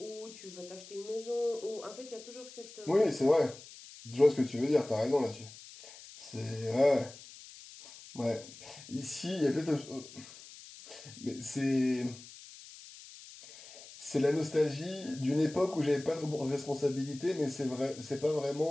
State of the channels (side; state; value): left; noise; hiss, 17 dB below the sound